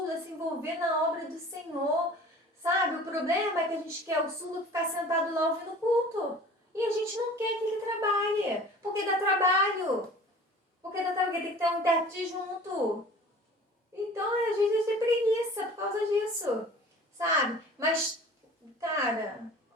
a se envolver na obra do Senhor. Sabe, o problema é que a gente quer o surdo ficar sentado lá ouvindo o culto. E a gente não quer que ele trabalhe. Porque dá trabalho. Porque tem que ter um intérprete junto. Então, às vezes, a gente tem preguiça por causa disso, sabe? Mas, cara,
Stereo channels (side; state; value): both; normal; correlation 0.44